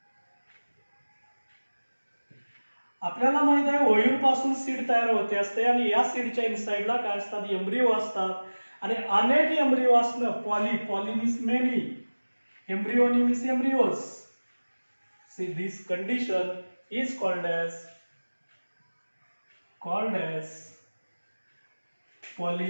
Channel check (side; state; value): both; inverted; correlation -1.00